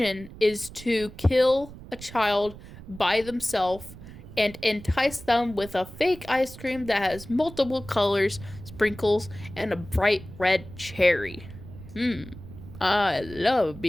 is to kill a child by themselves and entice them with a fake ice cream that has multiple colors, sprinkles, and a bright red cherry. I love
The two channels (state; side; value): noise; right; rumble, 16 dB below the sound